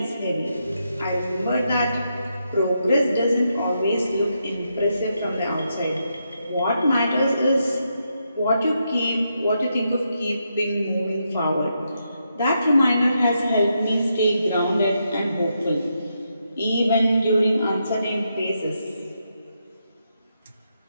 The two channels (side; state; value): both; inverted; correlation -0.82